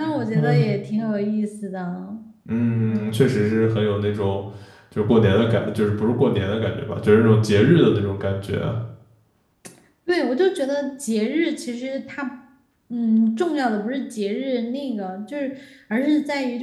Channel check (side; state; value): both; identical; correlation 1.00